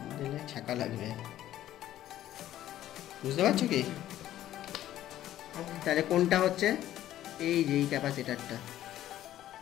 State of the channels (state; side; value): quieter; right; 12.9 dB